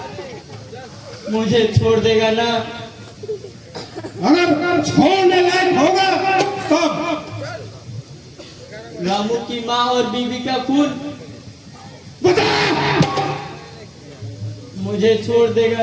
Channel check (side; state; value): both; identical; correlation 1.00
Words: मुझे छोड़ देगा ना? अगर छोड़ने लायक होगा तब। रामू की माँ और बीवी का खून बता। मुझे छोड़ देगा